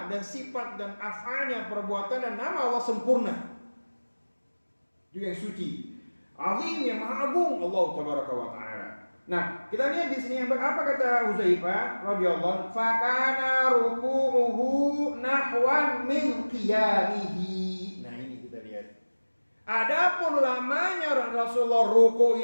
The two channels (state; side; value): inverted; both; correlation -1.00